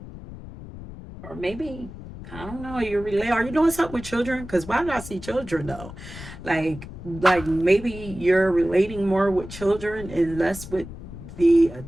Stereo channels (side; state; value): left; noise; rumble, 13 dB below the sound